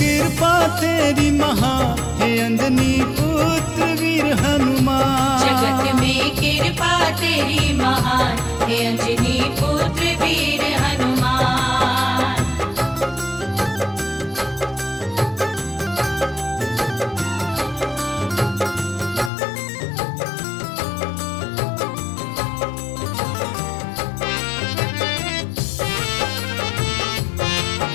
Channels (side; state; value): right; drops out; at 19.3 s